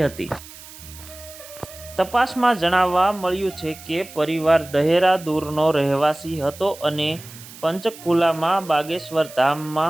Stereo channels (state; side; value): noise; right; hiss, 17 dB below the sound